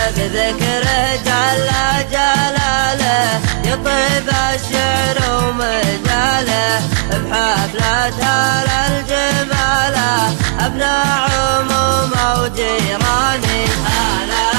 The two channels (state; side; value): silent; left; 56 dB below the other